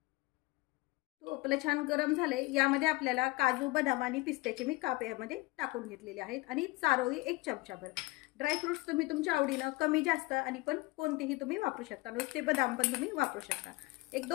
तूप आपलं छान गरम झाले, यामध्ये आपल्याला काजू, बदाम आणि पिस्त्याचे मी काप यामध्ये टाकून घेतलेले आहेत आणि चारोळी 1 चमचाभर। ड्रायफ्रुट्स तुम्ही तुमच्या आवडीनं कमी जास्त आणि पण कोणतेही तुम्ही वापरू शकता, नुसते बदाम पण तुम्ही वापरू शकता।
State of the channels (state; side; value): quieter; right; 22.5 dB